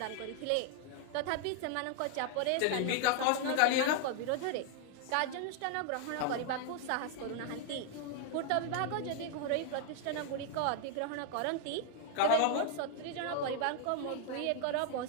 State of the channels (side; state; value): both; different; correlation 0.00